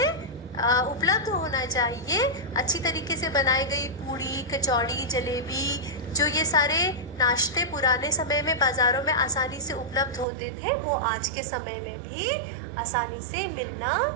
उपलब्ध होना चाहिए। अच्छी तरीके से बनाई गई पूड़ी, कचौड़ी, जलेबी, जो ये सारे नाश्ते पुराने समय में बाजारों में आसानी से उपलब्ध होते थे, वो आज के समय में भी आसानी से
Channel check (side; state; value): left; drops out; at 10.2 s